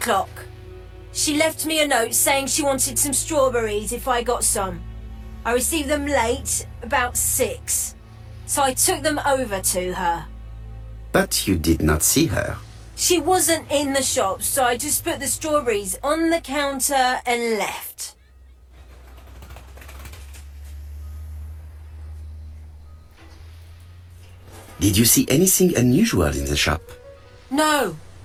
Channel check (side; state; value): both; identical; correlation 1.00